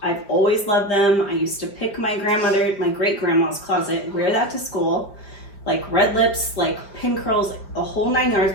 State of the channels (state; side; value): late; right; 5.0 ms